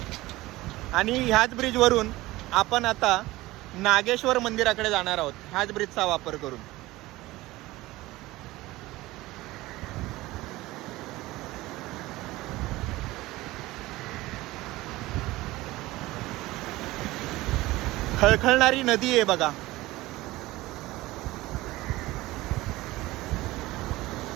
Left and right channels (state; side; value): quieter; left; 18.6 dB